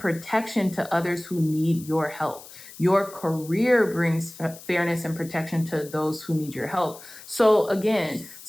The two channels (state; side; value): noise; left; hiss, 17 dB below the sound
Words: to others who need your help. Your career brings fairness and protection to those who need your help. So again,